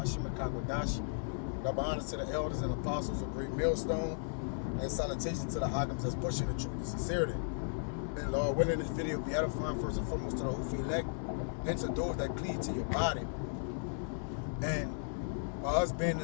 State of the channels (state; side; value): silent; right; 54 dB below the other